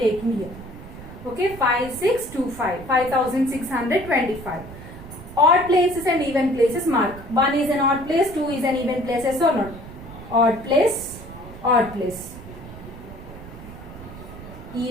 here. Okay, 5625, 5625. Odd places and even places mark. 1 is an odd place, 2 is an even place, yes or not? Odd place, odd place.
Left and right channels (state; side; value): noise; right; rumble, 14 dB below the sound